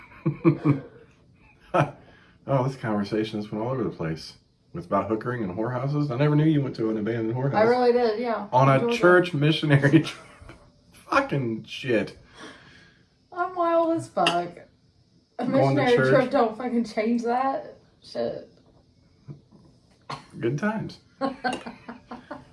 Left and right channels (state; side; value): identical; both; correlation 1.00